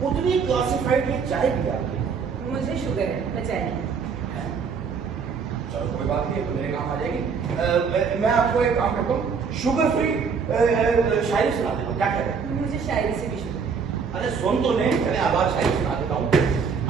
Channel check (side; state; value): left; quieter; 5.8 dB